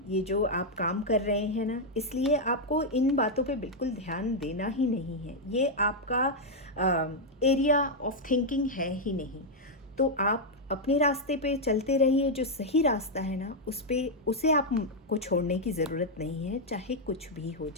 ये जो आप काम कर रहे हैं ना, इसलिए आपको इन बातों पे बिल्कुल ध्यान देना ही नहीं है। ये आपका एरिया ऑफ थिंकिंग है ही नहीं। तो आप अपने रास्ते पे चलते रहिए, जो सही रास्ता है ना उसे आपको छोड़ने की ज़रूरत नहीं है, चाहे कुछ भी हो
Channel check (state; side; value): normal; both; correlation -0.02